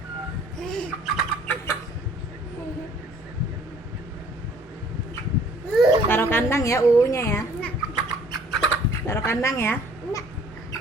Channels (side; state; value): both; normal; correlation 0.56